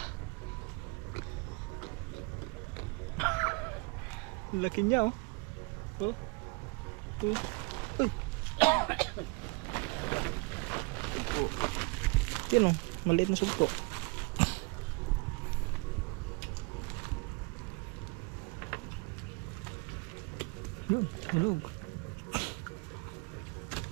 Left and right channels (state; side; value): quieter; left; 28.3 dB